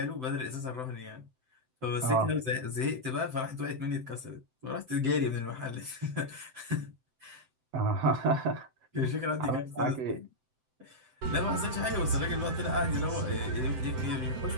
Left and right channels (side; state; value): left; late; 7.8 ms